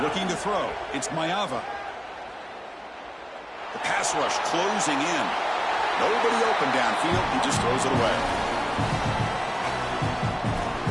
Looking to throw. It's Maeva. The pass rush closing in. Nobody open downfield. He just throws it away.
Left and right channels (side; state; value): both; identical; correlation 1.00